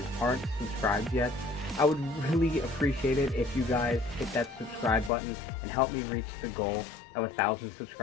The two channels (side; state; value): right; drops out; at 5.1 s